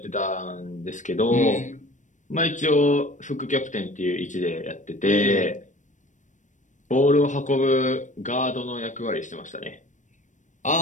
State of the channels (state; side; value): late; right; 0.36 ms